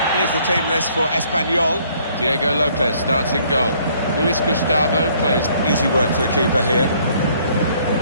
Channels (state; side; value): inverted; both; correlation -0.63